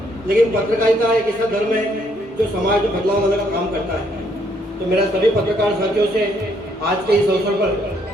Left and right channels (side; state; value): both; normal; correlation 0.70